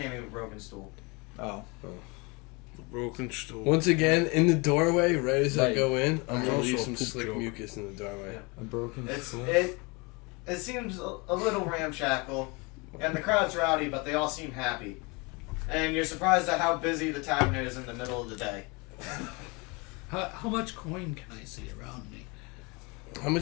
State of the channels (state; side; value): quieter; right; 28.3 dB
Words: of a broken stool. Oh. Broken stool. Once again, in the doorway, right as I Right. go in, I'm gonna Also leave a some poop slick joke. mucus in the doorway. Yeah. A broken stool. It seems a little ramshackle, and the crowd's rowdy, but they all seem happy. And you're surprised at how busy the tavern is in the middle of the day. How much coin can I see around me? How